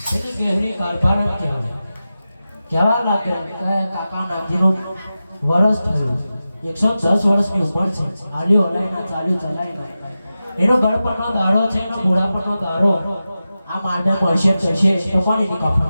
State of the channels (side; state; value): both; inverted; correlation -0.93